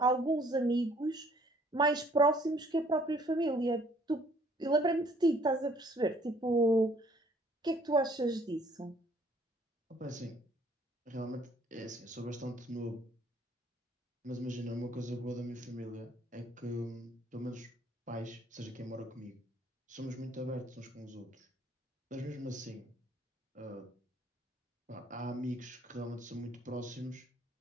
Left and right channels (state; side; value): normal; both; correlation 0.60